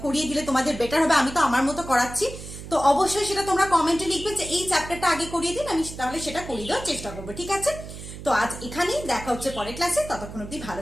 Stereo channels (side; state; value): right; noise; hum, 12 dB below the sound